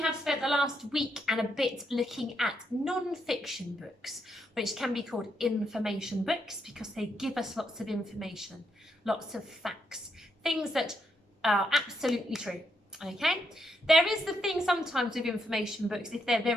spent the last week and a bit looking at non-fiction books, which can be called information books because they give us lots of information, lots of facts, things that are absolutely true. Okay, there is the thing sometimes with information books, if they're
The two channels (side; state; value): both; normal; correlation 0.79